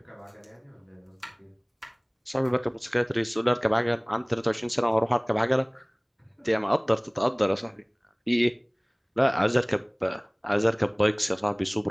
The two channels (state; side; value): identical; both; correlation 1.00